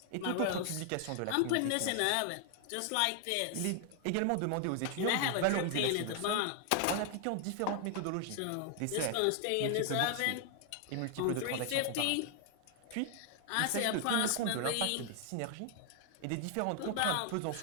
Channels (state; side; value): different; both; correlation 0.00